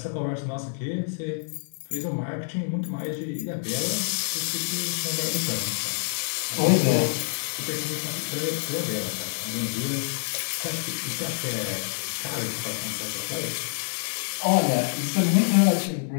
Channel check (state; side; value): silent; right; digital silence